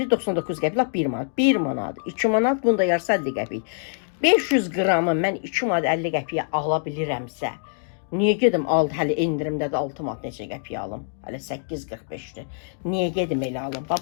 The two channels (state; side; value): silent; right; digital silence